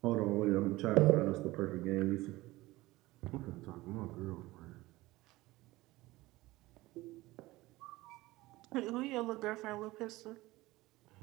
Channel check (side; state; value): left; quieter; 19.2 dB